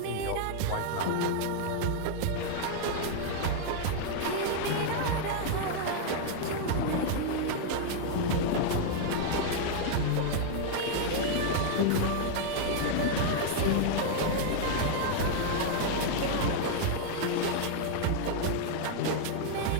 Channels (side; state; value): both; different; correlation 0.00